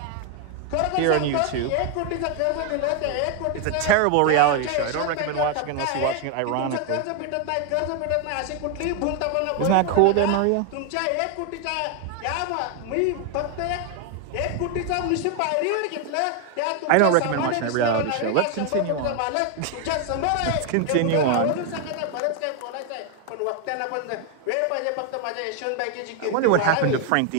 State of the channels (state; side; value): different; both; correlation 0.01